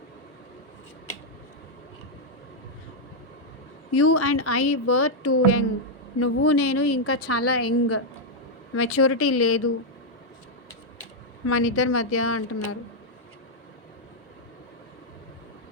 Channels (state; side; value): normal; both; correlation -0.02